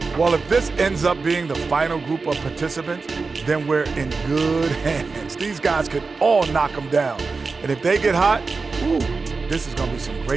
Well, if this ends up being the final group of participants, then we're in good hands. These guys could all knock them down. And if they get hot, ooh, this is going to be some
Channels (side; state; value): left; quieter; 4.3 dB